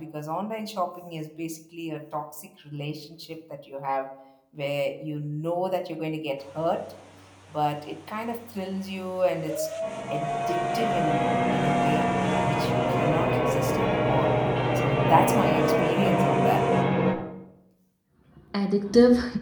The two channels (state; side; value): identical; both; correlation 1.00